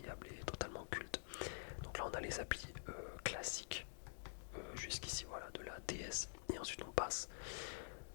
et totalement culte. Donc là on a les applis classiques jusqu'ici, voilà, de la DS, et ensuite on passe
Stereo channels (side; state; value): right; silent; digital silence